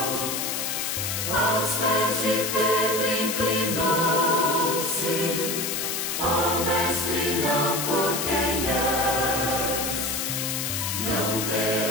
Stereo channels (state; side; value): noise; left; hiss, 1 dB below the sound